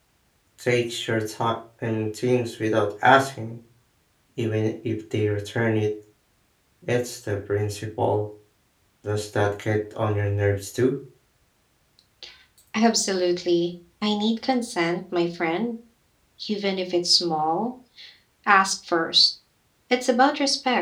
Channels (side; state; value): both; identical; correlation 1.00